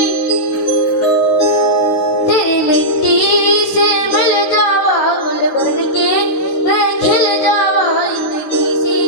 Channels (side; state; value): right; late; 16 ms